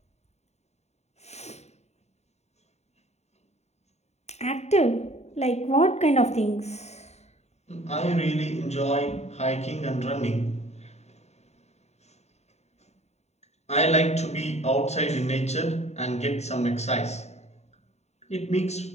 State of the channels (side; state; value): right; late; 0.32 ms